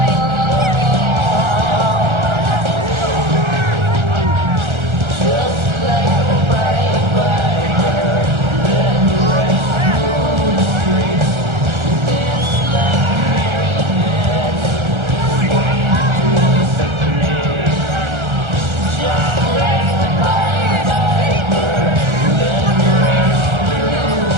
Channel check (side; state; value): left; late; 1.4 ms